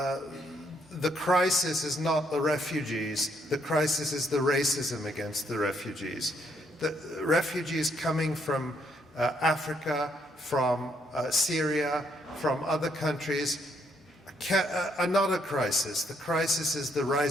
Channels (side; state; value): both; normal; correlation 0.72